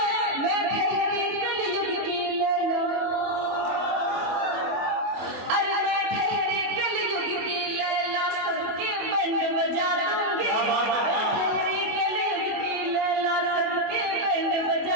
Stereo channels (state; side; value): late; left; 24 ms